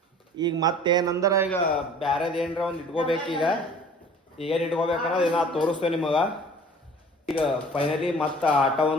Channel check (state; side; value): normal; both; correlation 0.47